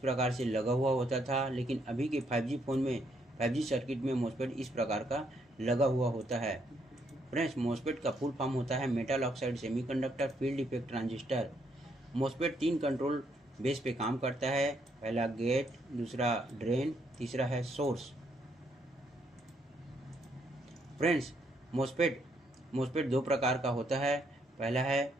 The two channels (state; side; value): normal; both; correlation 0.73